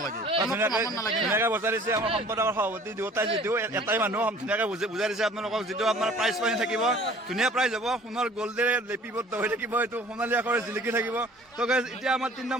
ধুনীয়াকৈ বজাই দিছে আমাৰ সম্পাদকৰ সভাপতি দুয়োটাই। যিটো এটাই মানুহ ধুনীয়াকৈ বুজাই দিছে আপোনালোকক, যিটো আপোনাৰ প্ৰাইজ পানী থাকিব, ধুনীয়া প্ৰাইজ হ'ব, সোণৰ গল্ডেৰে লিপিবদ্ধ হৈ থাকিব, এইটো সোণালী আখৰে জিলিকি থাকিব। ত' গাইজ এতিয়া আমাৰ 3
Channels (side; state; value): both; normal; correlation 0.50